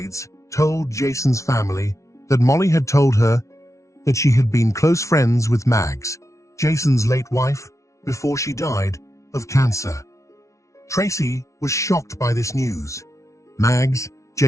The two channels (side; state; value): right; late; 0.14 ms